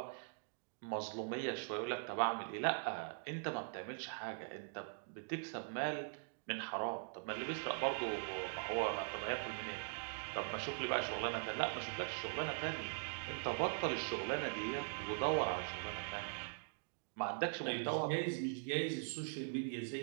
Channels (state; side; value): silent; left; digital silence